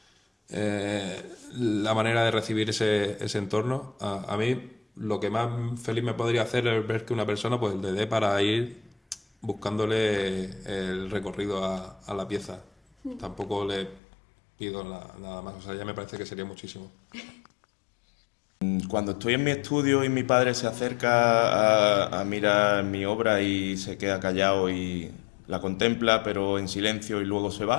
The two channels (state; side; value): drops out; right; at 14.0 s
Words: la manera de recibir ese entorno. A mí lo que más feliz me podría hacer es ver que una persona pues le dé para ir buscándole el recorrido a la pieza. Tampoco le pido nada más, o sea, ya me parece que sería muchísimo. Cuando estoy en mi estudio y mi padre se acerca a mirar mi obra y se queda callado y la contempla, pero en silencio y luego se